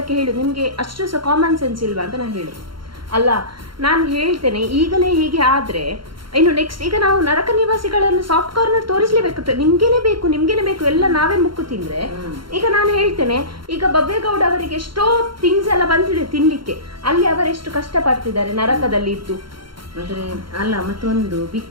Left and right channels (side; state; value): left; late; 0.73 ms